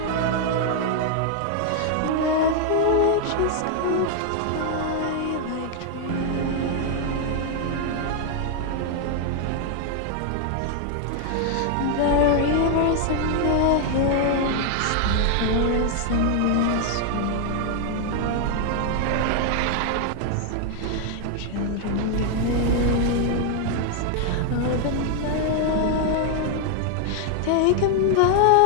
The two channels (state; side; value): different; both; correlation 0.00